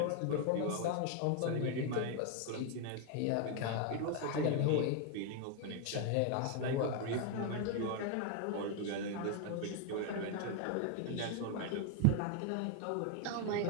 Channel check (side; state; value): both; different; correlation 0.01